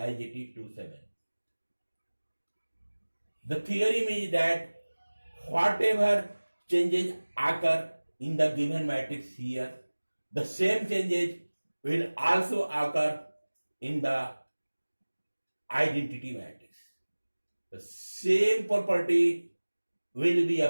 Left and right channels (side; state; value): both; inverted; correlation -1.00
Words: 2, 7. The theorem is that whatever changes occur in the given matrix here, the same changes will also occur in the identity matrix. The same property will be